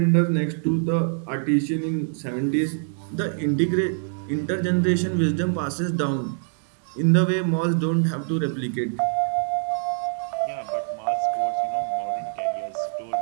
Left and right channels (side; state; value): left; silent; digital silence